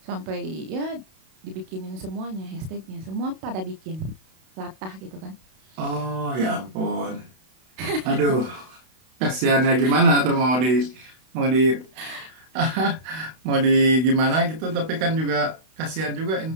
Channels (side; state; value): left; late; 32 ms